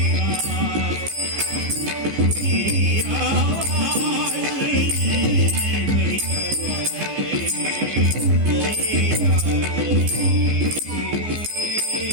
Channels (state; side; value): late; left; 15 ms